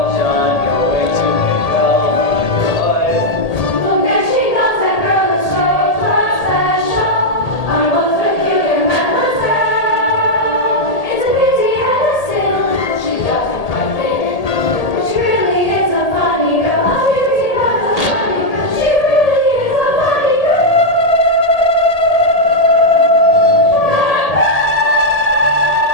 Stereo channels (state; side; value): late; right; 1.8 ms